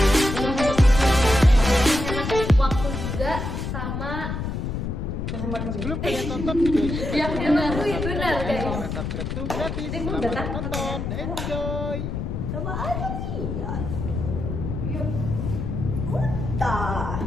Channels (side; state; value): left; noise; rumble, 4 dB below the sound